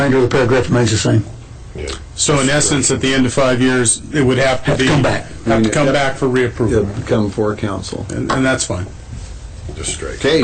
of the paragraph remains the same. So in essence, at the end of 5 years, it would have to Have to be... come back. Have to come back for reapproval, It'll come before council. and that's fine. Just straight.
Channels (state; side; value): identical; both; correlation 1.00